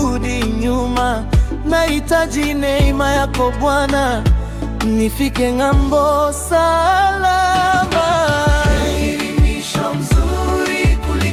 nyuma. Nahitaji neema yako Bwana, nifike ng'ambo salama. Heri mwisho mzuri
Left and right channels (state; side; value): identical; both; correlation 1.00